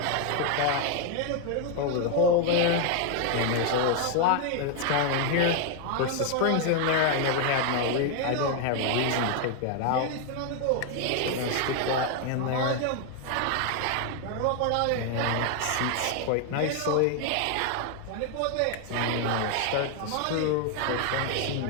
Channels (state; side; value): different; both; correlation 0.01